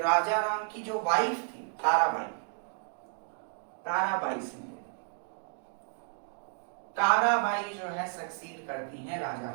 राजा राम की जो वाइफ थी ताराबाई सिंह, ताराबाई जो है सक्सीड करती हैं राजा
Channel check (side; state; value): left; silent; 57 dB below the other